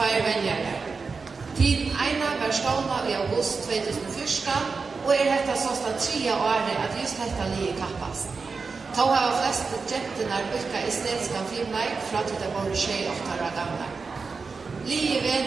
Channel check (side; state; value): left; quieter; 4.7 dB